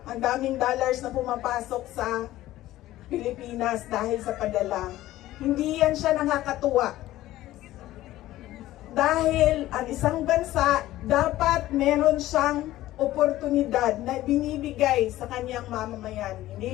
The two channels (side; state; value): right; quieter; 15.3 dB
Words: ang daming dollars na pumapasok sa Pilipinas dahil sa padala. Hindi yan siya nakakatuwa. Dahil ang isang bansa dapat meron siyang oportunidad na binibigay sa kanyang mamamayan. Hindi